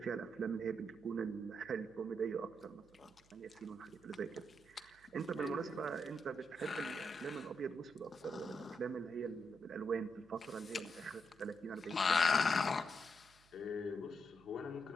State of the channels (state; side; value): noise; right; hum, 28 dB below the sound